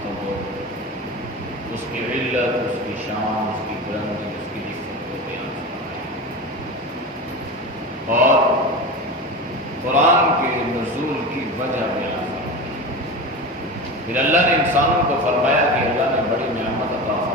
اس کی علت، اس کی شان، اس کی بلندی، اس کی عزت کو بیان فرمایا، اور قرآن کے نزول کی وجہ بیان فرمائی۔ پھر اللہ نے انسانوں کو فرمایا کہ اللہ نے بڑی نعمت عطا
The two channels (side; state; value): both; normal; correlation 0.26